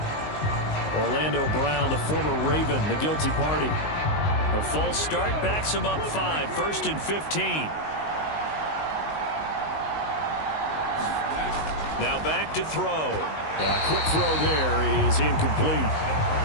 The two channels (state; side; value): late; right; 19 ms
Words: Orlando Brown, the former Raven, the guilty party. A false start backs him up 5, 1st and 15. Now back to throw. A quick throw there is incomplete.